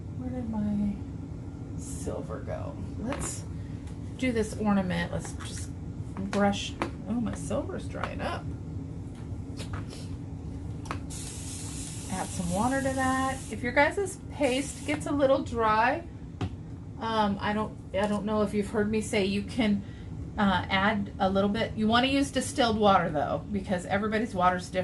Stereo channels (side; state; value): both; identical; correlation 1.00